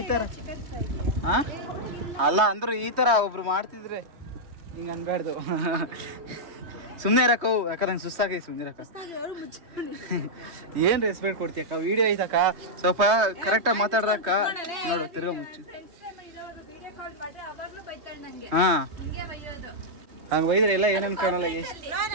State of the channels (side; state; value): left; late; 3.2 ms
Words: ಥರ ಅಲ್ಲ ಅಂದ್ರು ಈ ಥರ ಒಬ್ರು ಮಾಡ್ತಿದ್ರೆ ಹಿಂಗೆ ಅನ್ಬಾರ್ದು. ಸುಮ್ಮನೆ ಇರಕ್ಕವು, ಯಾಕಂದ್ರೆ ನಂಗೆ ಸುಸ್ತಾಗಿ ಸುಮ್ಮನೆ ಇರಕ್ಕ. ಏನು ರೆಸ್ಪೆಕ್ಟ್ ಕೊಡ್ತೀಯಕ್ಕ? ವಿಡಿಯೋ ಐತಕ್ಕ, ಸ್ವಲ್ಪ ಕರೆಕ್ಟಾಗಿ ಮಾತಾಡ್ರಕ್ಕ. ನೋಡು ತಿರ್ಗಾ ಮುಚ್ಚು. ಹಾಂ ಹಂಗೆ ಒಯ್ದ್ರೆ ಎಲ್ಲ ಏನು ಅನ್ಕೊಳಲ್ಲ,